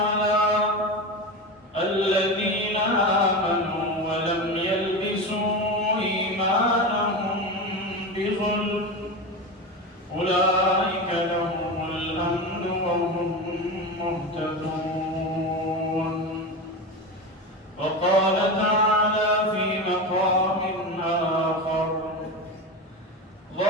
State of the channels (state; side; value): normal; both; correlation 0.22